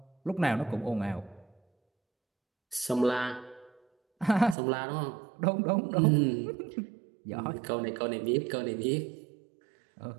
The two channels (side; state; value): left; drops out; at 4.5 s